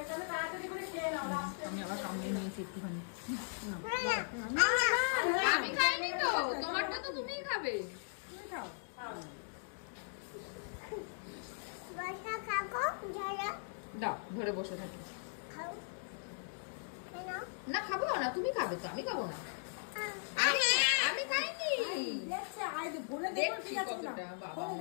তাড়াতাড়ি করে খেয়ে নাও। আমি আবার সামনে নিয়েছি একটুখানি। আমি খাইনি তো, তোমারটা তো তুমিই খাবে। দাও ধরে বসে থাকি। না খাবো না, তুমি খাবে তো, আমি খাবো না। আমি খাইনি।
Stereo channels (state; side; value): silent; right; digital silence